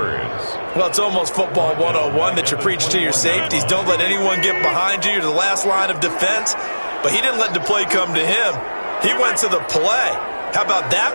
Well, it's almost football 101 that you preach to your safeties. Don't let anyone get behind you. You're the last line of defense. But he didn't let the play come to him. He went to the play. How about that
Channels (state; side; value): inverted; both; correlation -1.00